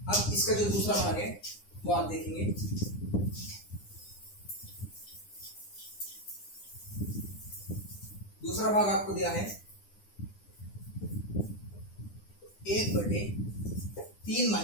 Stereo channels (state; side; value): late; right; 9.9 ms